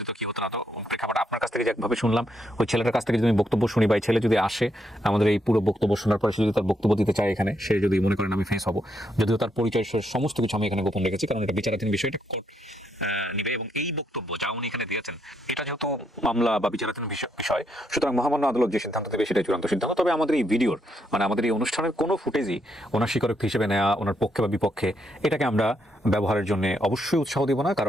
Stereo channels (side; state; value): both; normal; correlation 0.77